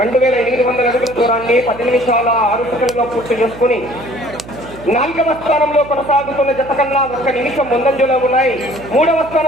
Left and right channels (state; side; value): noise; right; hum, 16 dB below the sound